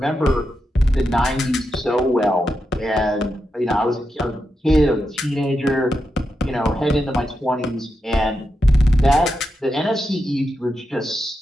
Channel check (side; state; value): both; normal; correlation 0.87